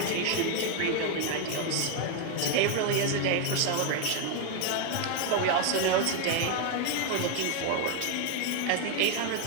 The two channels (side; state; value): both; different; correlation 0.01